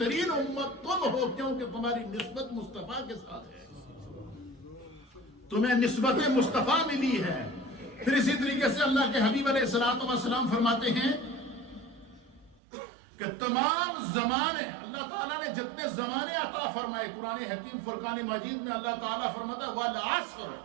امت تم ہو، کیونکہ تمہاری نسبت مصطفیٰ کے ساتھ ہے، تمہیں نسبت مصطفیٰ ملی ہے۔ پھر اسی طریقے سے اللہ کے حبیب علیہ الصلوۃ والسلام فرماتے ہیں کہ تمام زمانے، اللہ تعالیٰ نے جتنے زمانے عطا فرمائے، قرآن حکیم فرقان مجید میں اللہ تعالیٰ فرماتا ہے والعصر،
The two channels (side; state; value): left; drops out; at 12.6 s